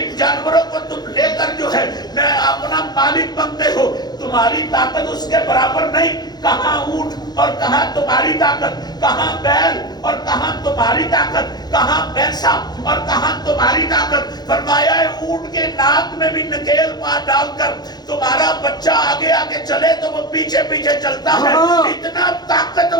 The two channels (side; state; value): right; late; 0.20 ms